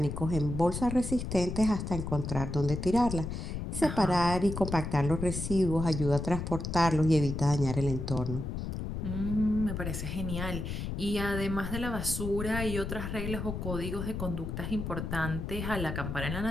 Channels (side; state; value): left; noise; rumble, 5 dB below the sound